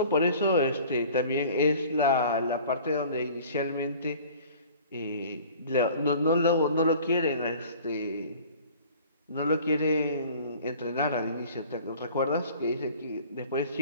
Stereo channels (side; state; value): both; inverted; correlation -0.47